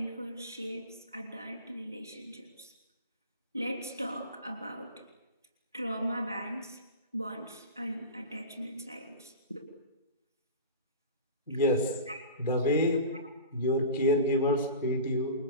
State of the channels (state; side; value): inverted; both; correlation -0.32